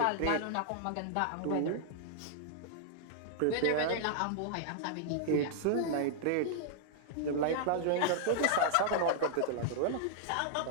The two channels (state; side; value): different; both; correlation -0.01